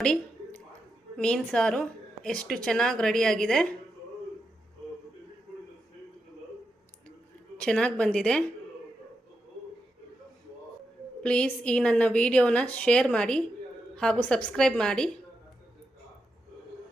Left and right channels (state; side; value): normal; both; correlation 0.86